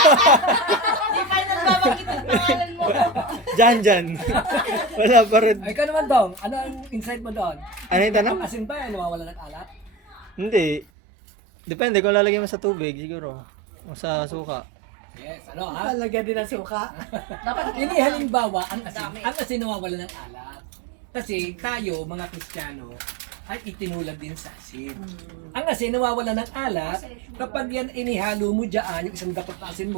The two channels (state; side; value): drops out; left; at 10.9 s